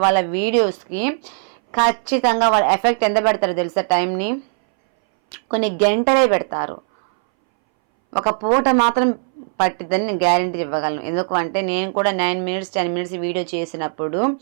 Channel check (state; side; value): silent; left; 63 dB below the other